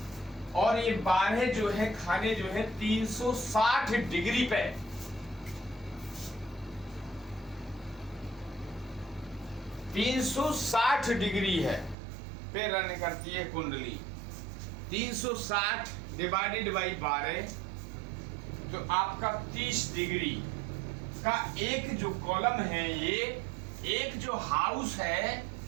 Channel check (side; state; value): left; drops out; at 12.0 s